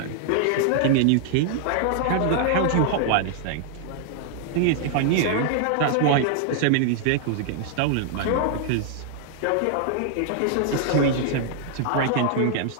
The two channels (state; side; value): different; both; correlation -0.01